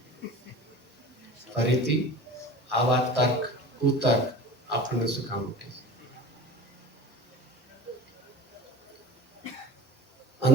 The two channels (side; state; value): both; normal; correlation 0.36